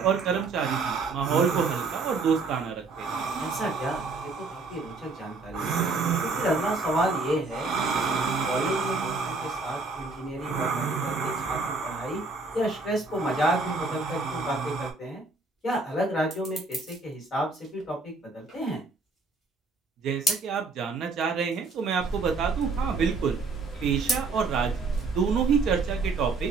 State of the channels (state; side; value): quieter; left; 3.9 dB